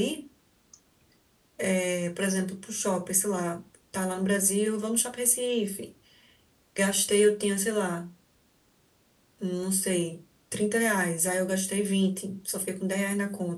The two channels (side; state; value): both; identical; correlation 1.00